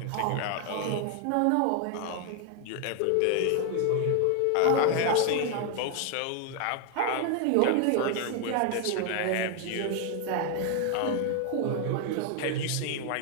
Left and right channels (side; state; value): both; different; correlation 0.00